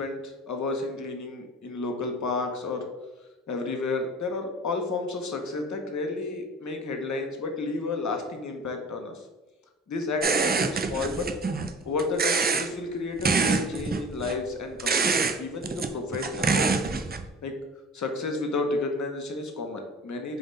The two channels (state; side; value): normal; both; correlation 0.39